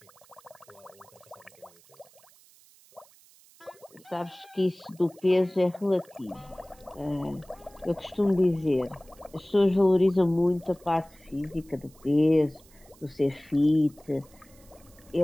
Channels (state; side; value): noise; right; hiss, 27 dB below the sound